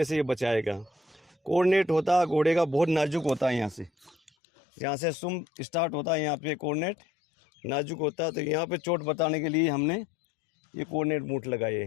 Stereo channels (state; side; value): drops out; right; at 4.3 s